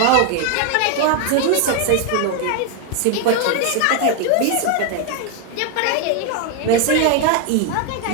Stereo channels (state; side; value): different; both; correlation 0.01